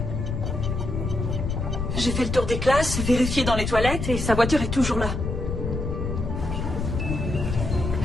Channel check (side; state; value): left; noise; rumble, 3 dB below the sound